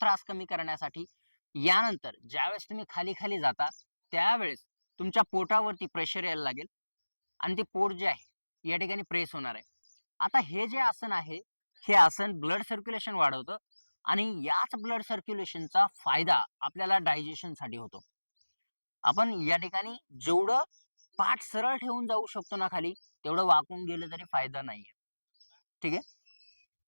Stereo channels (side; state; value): both; inverted; correlation -1.00